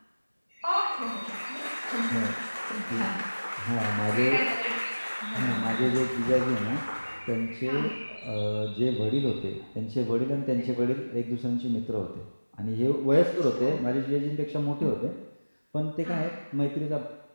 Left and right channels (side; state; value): both; inverted; correlation -1.00